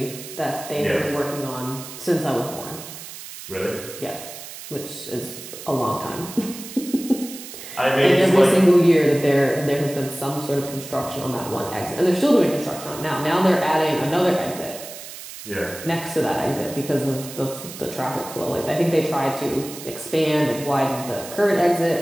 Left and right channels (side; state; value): right; noise; hiss, 13 dB below the sound